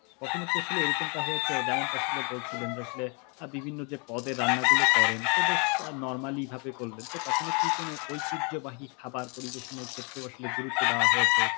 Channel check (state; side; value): quieter; right; 34.4 dB